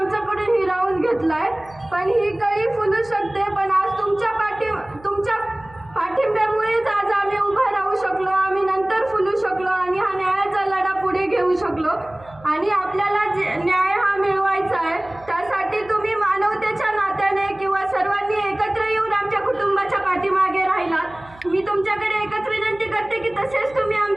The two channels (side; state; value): right; noise; hum, 23 dB below the sound